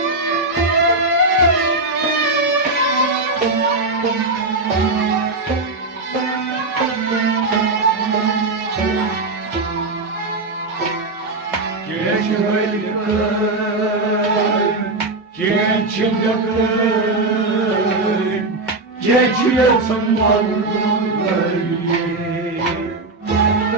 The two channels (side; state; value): left; quieter; 3.2 dB